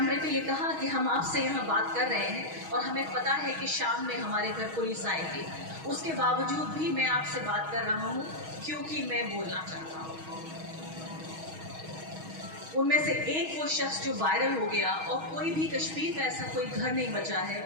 पे ये कहा कि हम आपसे यहाँ बात कर रहे हैं और हमें पता है कि शाम में हमारे घर पुलिस आएगी, उसके बावजूद भी मैं आपसे बात कर रहा हूँ क्योंकि मैं बोलना चाहता हूँ। उनमें से एक वो शख्स जो वायरल हो गया, और कोई भी कश्मीर का ऐसा कोई घर नहीं बचा है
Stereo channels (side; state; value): left; late; 6.3 ms